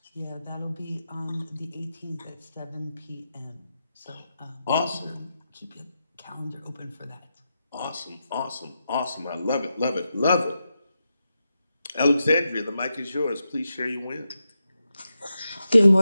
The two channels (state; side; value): inverted; both; correlation -0.88